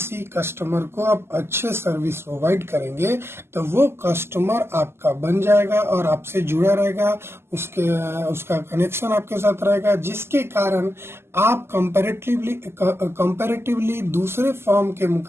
कस्टमर को आप अच्छे सर्विस प्रोवाइड करेंगे तो वो कस्टमर आपका बन जाएगा और आपसे जुड़ा रहेगा, उसका कनेक्शन आपके साथ रहेगा, जिसके कारण आप कंपैरेटिवली दूसरे फर्म के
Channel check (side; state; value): left; late; 0.12 ms